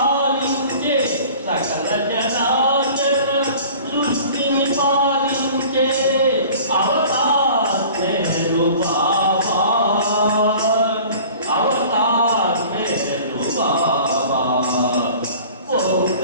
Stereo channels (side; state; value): both; inverted; correlation -0.45